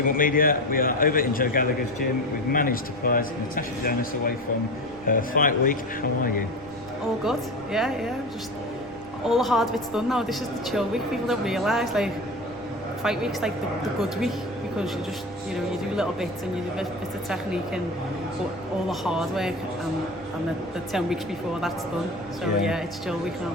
Media. We are over in Joe Gallagher's gym. We've managed to prize Natasha Jonas away from her fight week. How are you? All good, yeah. Just all the hard bit's done now. This is the chill week. People don't realise, like, fight week's like the good week because you just, you do little bits and you do bits of technique and but all the hard work and the 10 weeks before that's done. So yeah, it's chill week now.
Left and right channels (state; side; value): noise; left; rumble, 22 dB below the sound